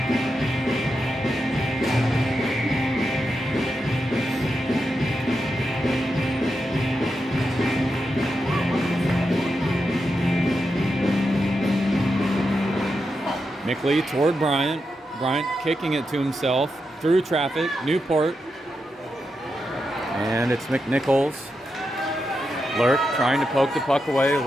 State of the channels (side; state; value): both; normal; correlation 0.87